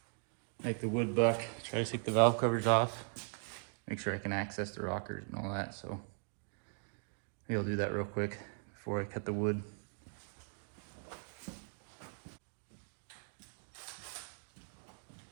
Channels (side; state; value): left; silent; 52 dB below the other